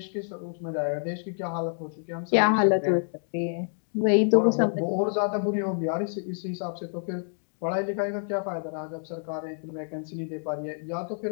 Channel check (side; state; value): right; silent; digital silence